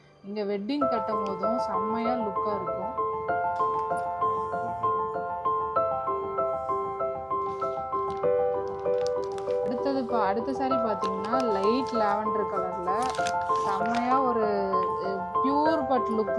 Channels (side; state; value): both; identical; correlation 1.00